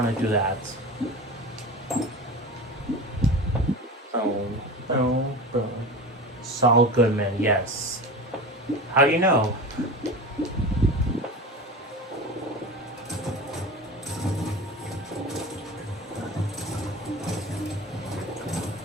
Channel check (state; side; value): normal; both; correlation 0.30